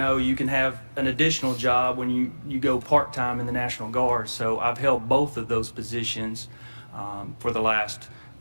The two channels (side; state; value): both; inverted; correlation -1.00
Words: you can have an additional job when you go part-time in the National Guard. So I've held both of those positions for the last